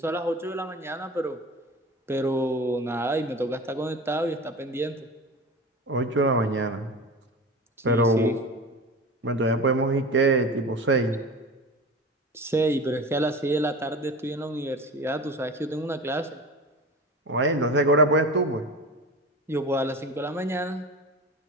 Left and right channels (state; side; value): normal; both; correlation 0.32